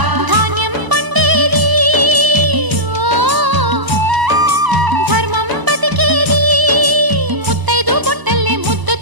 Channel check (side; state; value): left; late; 1.0 ms